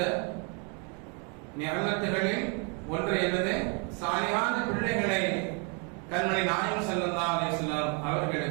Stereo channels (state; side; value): quieter; left; 36.1 dB